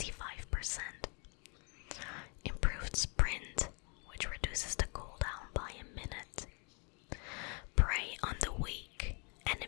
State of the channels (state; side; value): quieter; right; 35.7 dB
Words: Improved Sprint, which reduces the cooldown by a minute. Prey on the Weak.